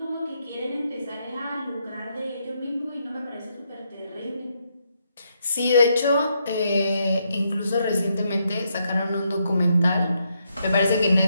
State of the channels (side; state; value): both; inverted; correlation -0.78